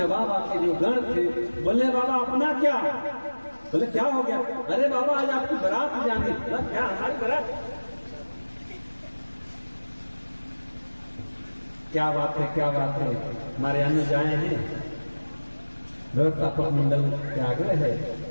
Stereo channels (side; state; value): both; inverted; correlation -1.00